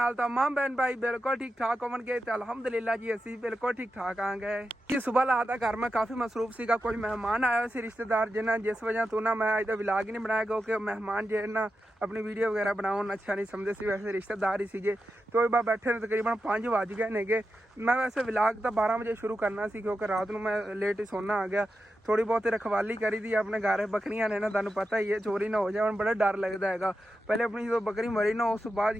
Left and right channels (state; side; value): normal; both; correlation 0.89